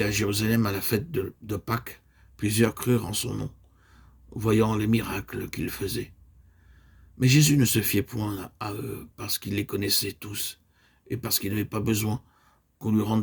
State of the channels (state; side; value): identical; both; correlation 1.00